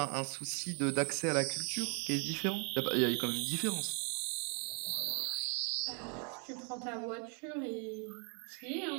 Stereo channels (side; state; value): left; quieter; 37.0 dB